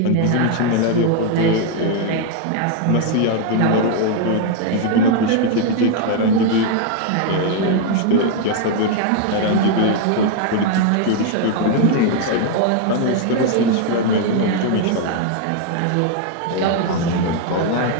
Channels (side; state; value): both; different; correlation 0.00